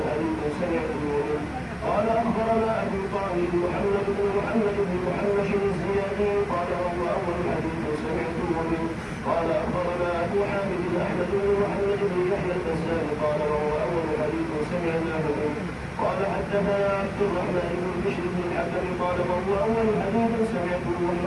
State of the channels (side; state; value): both; identical; correlation 1.00